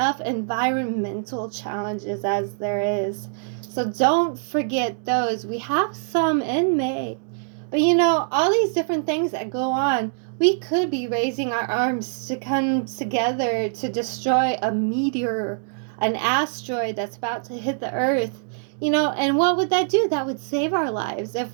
environmental challenges as there is. So don't forget those. We have some in May. But you know, all these different things that go on, we could be raising our arms to come together to destroy a meteor, an asteroid that's about to hit the Earth. You know, and what would that do? That would save our lives. If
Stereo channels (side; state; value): left; silent; digital silence